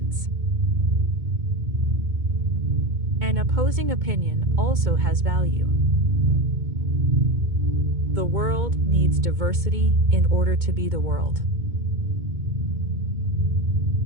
An opposing opinion also has value. The world needs diversity in order to be the world.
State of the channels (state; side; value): late; left; 2.2 ms